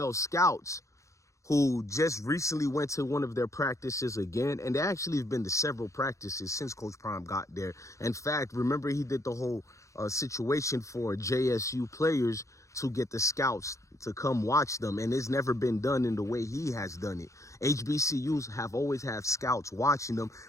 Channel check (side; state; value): right; late; 0.15 ms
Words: scouts who just recently went to one of their practices again. And they actually have been to several practices since Coach Prime got there. In fact, remember he did the whole situation for JSU players to get the scouts to come watch them. And it's never been done in the way he has done it. HBCUs have always had scouts watching them.